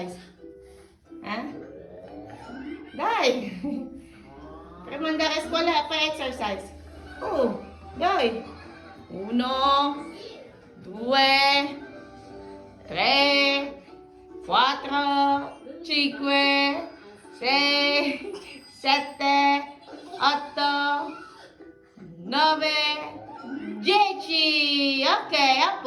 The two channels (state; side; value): identical; both; correlation 1.00